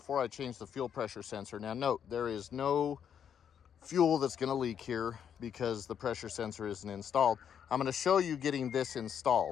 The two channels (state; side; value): quieter; right; 8.4 dB